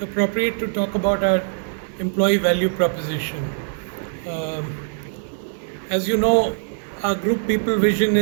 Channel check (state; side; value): silent; left; 64 dB below the other